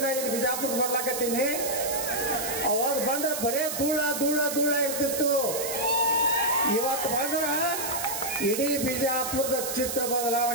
ಇಲ್ಲಿ ಬಿಜಾಪುರ ಬರ್ಲಾಕತ್ತೀನಿ. ಅವಾಗ ಬಂದ್ರೆ ಬರೇ ಧೂಳ ಧೂಳ ಧೂಳ ಇರ್ತಿತ್ತು. ಇವತ್ತು ಬಂದ್ರೆ ಇಡೀ ಬಿಜಾಪುರದ ಚಿತ್ರ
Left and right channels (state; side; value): noise; right; hiss, 4 dB below the sound